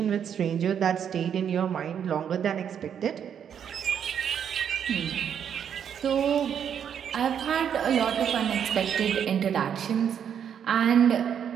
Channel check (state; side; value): quieter; left; 8.4 dB